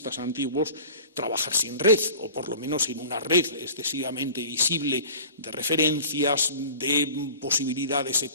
antiguos, trabajar sin red, o por lo menos sin una red excesivamente visible de referencias, de posibilidades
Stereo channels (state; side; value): inverted; both; correlation -0.41